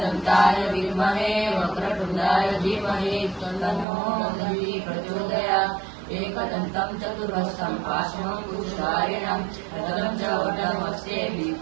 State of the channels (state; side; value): drops out; left; at 3.9 s